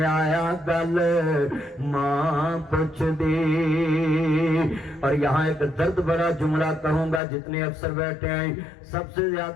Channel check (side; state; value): right; drops out; at 7.2 s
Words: آیا گل ماں پوچھ دی اور یہاں ایک درد بھرا جملہ کہوں گا جتنے افسر بیٹھے ہیں سب سے